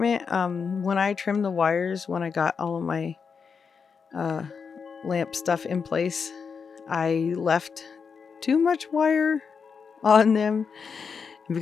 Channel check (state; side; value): quieter; right; 5.9 dB